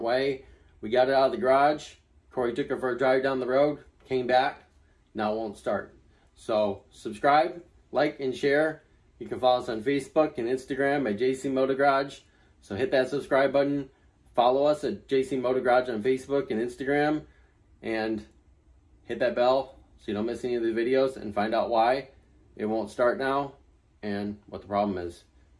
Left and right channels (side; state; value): both; identical; correlation 1.00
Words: way. We got it out of the garage. Corey took her for a drive down the road. Came back. Now it won't start. So subscribe, like, and share. You can follow us on Facebook and Instagram at JC Moto Garage. So hit that subscribe button. Follow us at JC Moto Garage on Facebook and Instagram, and hit that bell so you don't miss any of the videos and find out why it won't start now and what the problem is.